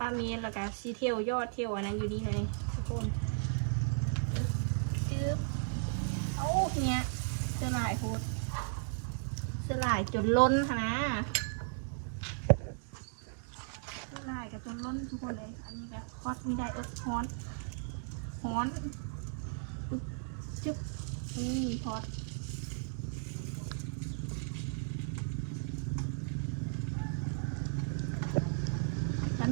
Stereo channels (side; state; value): left; silent; digital silence